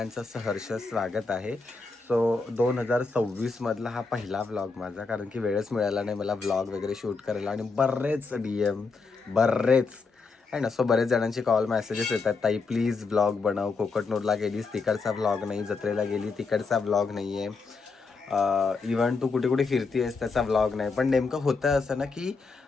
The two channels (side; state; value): right; quieter; 4.4 dB